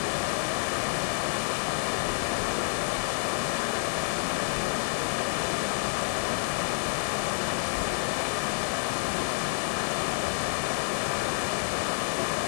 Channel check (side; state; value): right; silent; 59 dB below the other